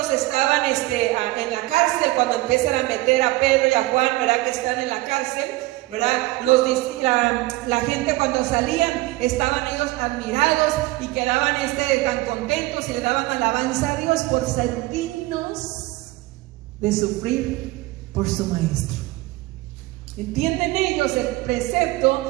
estaban en la cárcel, cuando empiezan a meter a Pedro y a Juan, ¿verdad? Que están en la cárcel, ¿verdad? La gente cuando salían estaban ellos admirados y quedaban tan contentos y le daban alabanza a Dios por ser dignos de sufrir por su maestro. ¿Entienden ellos el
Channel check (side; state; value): left; quieter; 19.7 dB